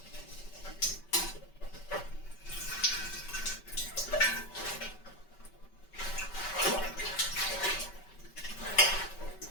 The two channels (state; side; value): late; right; 5.2 ms